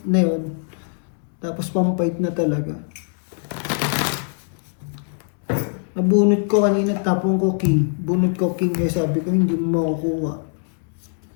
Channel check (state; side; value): silent; right; 58 dB below the other